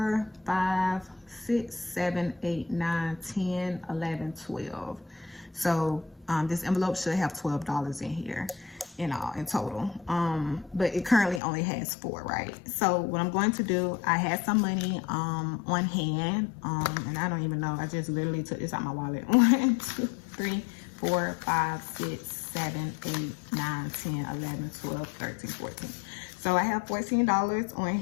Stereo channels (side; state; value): right; drops out; at 11.4 s